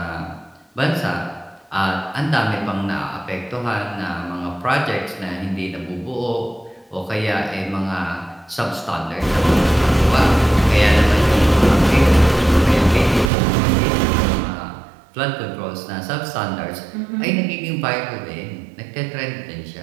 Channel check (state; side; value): drops out; left; at 13.3 s